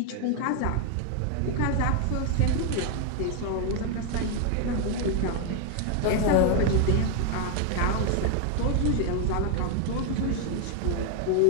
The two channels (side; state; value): both; different; correlation 0.01